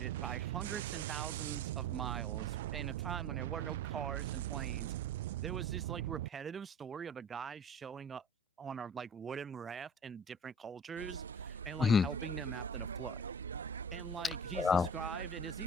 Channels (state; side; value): normal; both; correlation 0.41